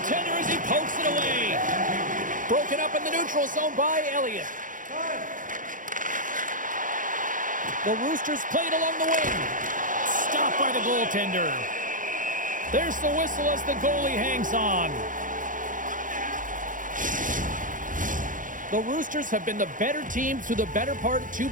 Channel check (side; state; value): left; late; 0.38 ms